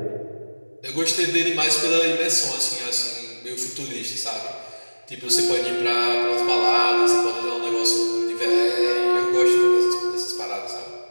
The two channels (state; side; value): inverted; both; correlation -1.00